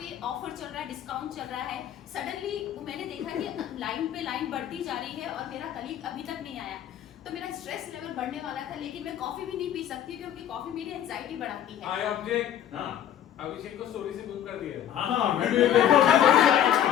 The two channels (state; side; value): quieter; right; 10.5 dB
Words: ऑफर चल रहा है, डिस्काउंट चल रहा है, सडनली मैंने देखा कि लाइन पे लाइन बढ़ती जा रही है और मेरा कलीग अभी तक नहीं आया। तो मेरा स्ट्रेस लेवल बढ़ने वाला था, लेकिन मैं कॉफी भी नहीं पी सकती क्योंकि कॉफी मेरी एंजाइटी बढ़ाती है। I object. हाँ अभिषेक को स्टोरी से मूव कर दिया। हाँ मैं भी